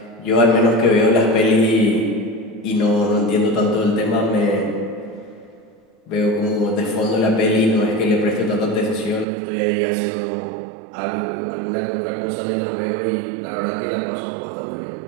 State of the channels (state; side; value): drops out; left; at 9.2 s